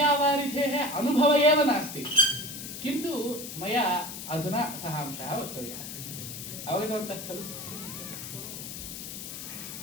अनुभवः एव नास्ति, किन्तु मया अधुना सः अंशः वक्तव्यः। अवगतवन्तः खलु?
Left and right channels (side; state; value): left; noise; hiss, 9 dB below the sound